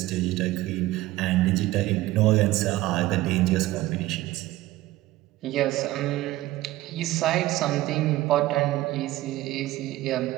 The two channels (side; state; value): left; quieter; 16.8 dB